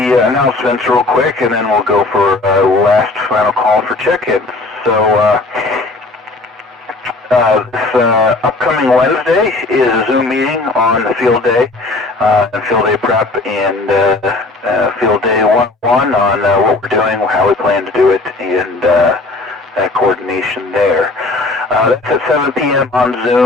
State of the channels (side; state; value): right; quieter; 3.2 dB